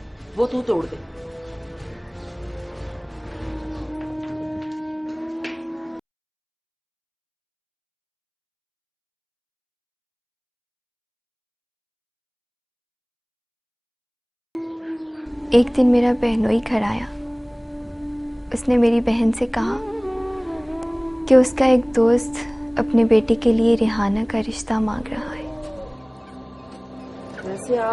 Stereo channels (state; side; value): identical; both; correlation 1.00